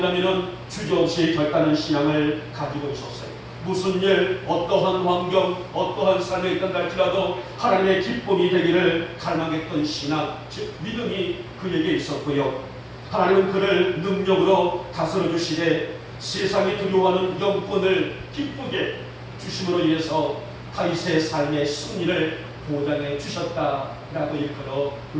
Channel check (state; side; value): identical; both; correlation 1.00